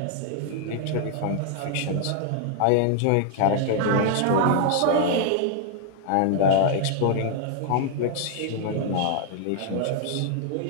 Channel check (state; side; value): different; both; correlation 0.00